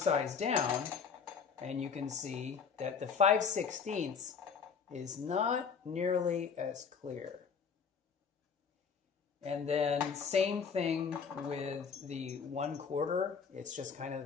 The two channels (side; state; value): right; quieter; 6.1 dB